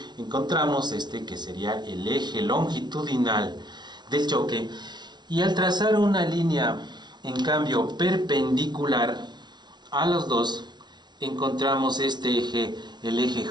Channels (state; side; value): late; left; 0.20 ms